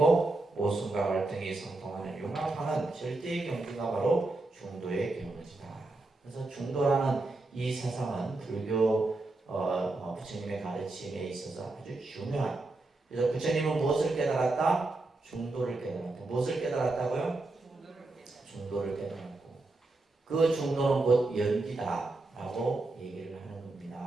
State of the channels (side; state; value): left; quieter; 3.1 dB